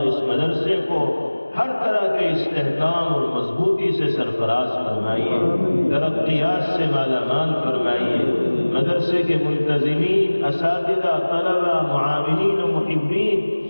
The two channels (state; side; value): inverted; both; correlation -1.00